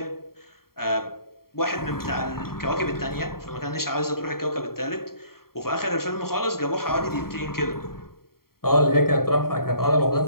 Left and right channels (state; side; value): late; right; 0.93 ms